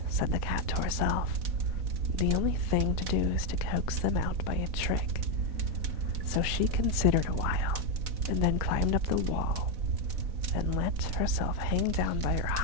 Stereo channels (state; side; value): late; left; 4.0 ms